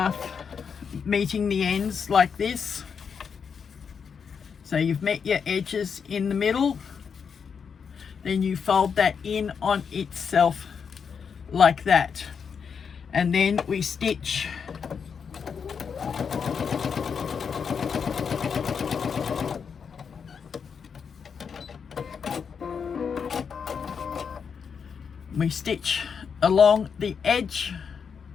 meeting the ends like this. So you've met your edges in the middle, then you fold that in on itself like that, and then we stitch along the edge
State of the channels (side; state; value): right; quieter; 6.4 dB